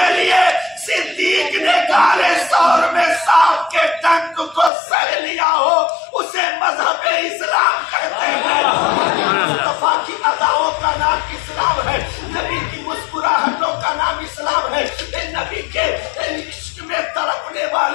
لیے صدیق نے کالے سور میں سانپ کے ڈنک کو سہ لیا ہو، اسے مذہب اسلام کہتے ہیں۔ مصطفیٰ کی اداؤں کا نام اسلام ہے، نبی کی مسکراہٹوں کا نام اسلام ہے، نبی کے عشق میں تڑپنے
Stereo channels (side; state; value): right; drops out; at 4.7 s